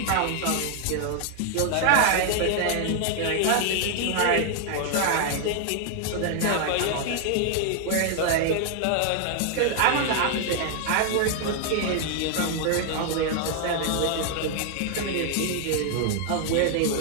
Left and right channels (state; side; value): different; both; correlation 0.00